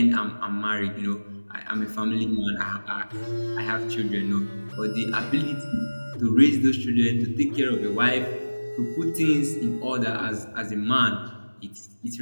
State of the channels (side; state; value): both; inverted; correlation -1.00